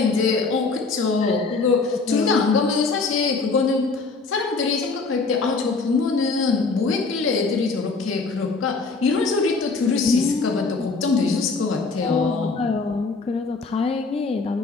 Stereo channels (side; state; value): right; quieter; 4.1 dB